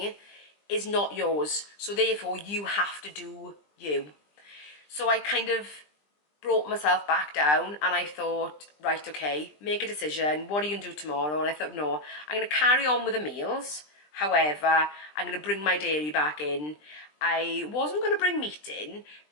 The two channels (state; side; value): late; right; 20 ms